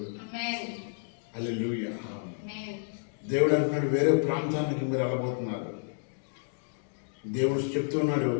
హల్లెలూయా. దేవుడు అంటున్నాడు వేరే ప్రాంతానికి మీరు వెళ్ళబోతున్నారు. దేవుడు చెప్తున్నాడు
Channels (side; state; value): right; silent; digital silence